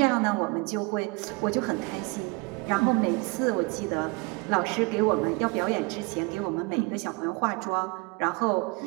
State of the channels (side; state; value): left; quieter; 27.4 dB